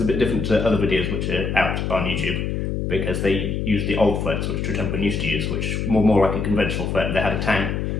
a bit different to other videos which are out on YouTube, because they use the old frets which True Temperament used to use, which were more like a conventional fret. They had a tang,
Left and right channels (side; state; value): left; noise; hum, 1 dB below the sound